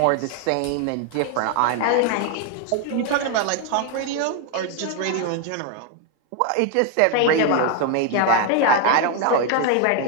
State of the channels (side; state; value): both; different; correlation 0.01